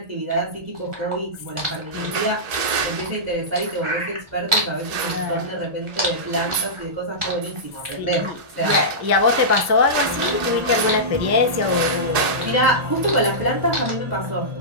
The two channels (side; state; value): left; late; 1.8 ms